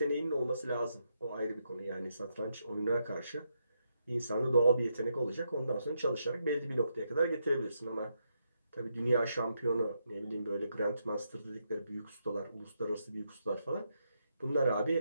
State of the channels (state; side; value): inverted; both; correlation -0.81